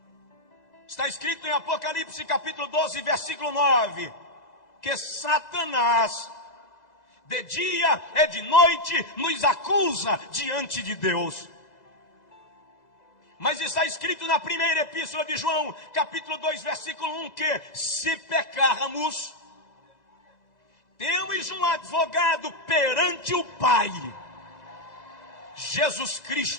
Está escrito em Apocalipse capítulo 12, versículo 9, que Satanás, de dia e de noite, nos acusa diante de Deus. Mas está escrito na primeira epístola de João, capítulo 2, versículo 1, que se pecarmos, Temos um advogado perante o Pai, Jesus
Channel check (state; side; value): late; right; 2.0 ms